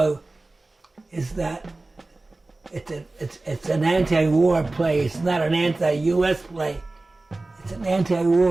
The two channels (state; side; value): quieter; left; 3.1 dB